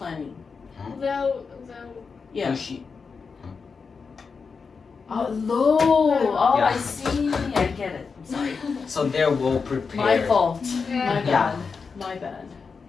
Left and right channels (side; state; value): right; quieter; 5.2 dB